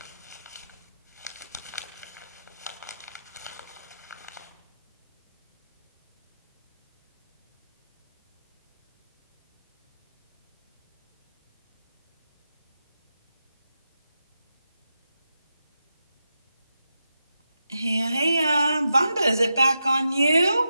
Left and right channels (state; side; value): inverted; both; correlation -0.88